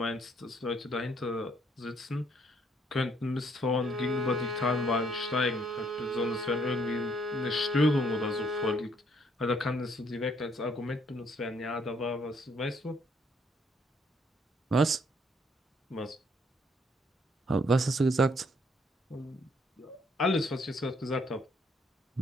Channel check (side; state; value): both; normal; correlation 0.68